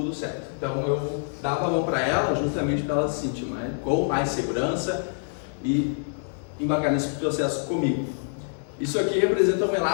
certo. Então eu dava a mão para ela justamente para ela se sentir com mais segurança e embarcar nesse processo comigo. Isso aqui representa um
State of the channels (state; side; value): silent; right; digital silence